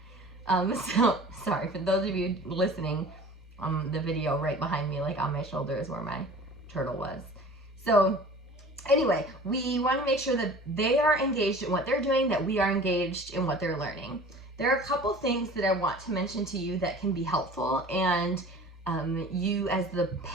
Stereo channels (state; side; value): normal; both; correlation 0.43